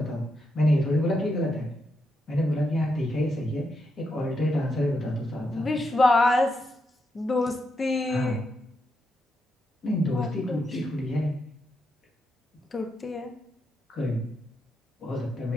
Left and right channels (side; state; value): both; normal; correlation 0.83